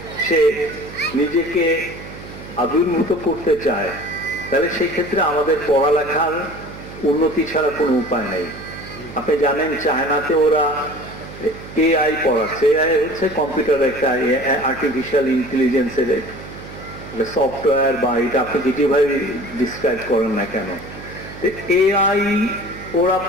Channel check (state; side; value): noise; right; hum, 14 dB below the sound